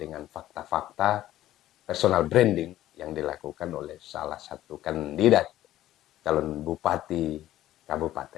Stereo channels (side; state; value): right; quieter; 13.9 dB